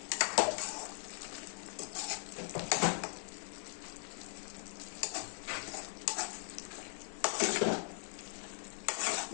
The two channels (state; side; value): silent; right; 52 dB below the other